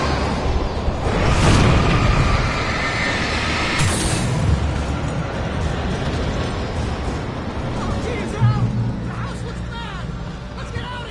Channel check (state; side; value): identical; both; correlation 1.00